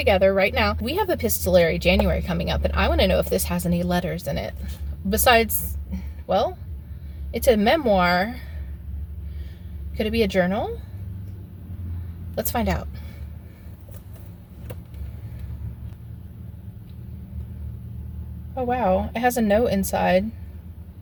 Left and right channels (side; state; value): both; identical; correlation 1.00